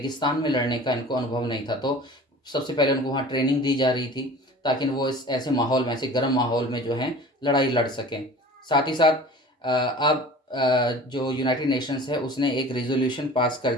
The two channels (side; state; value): both; normal; correlation 0.41